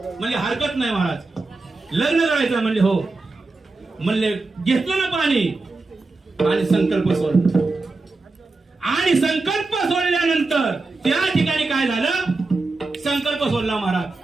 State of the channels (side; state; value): left; quieter; 3.5 dB